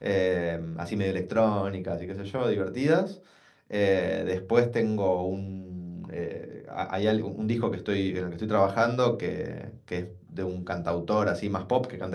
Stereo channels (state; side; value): identical; both; correlation 1.00